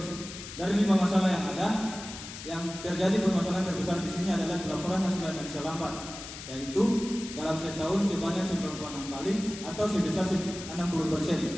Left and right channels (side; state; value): left; noise; hiss, 11 dB below the sound